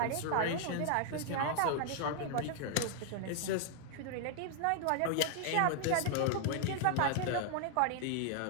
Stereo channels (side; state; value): both; different; correlation 0.00